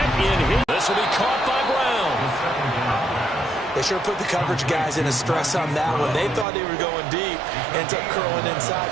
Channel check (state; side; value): drops out; left; at 6.5 s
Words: in his... This will be caught by Brown. They sure put the coverage guys in a stress on that one. They thought they were going deep. Ends up curling inside